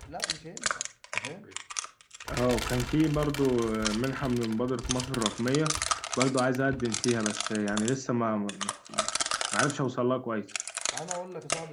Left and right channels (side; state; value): both; identical; correlation 1.00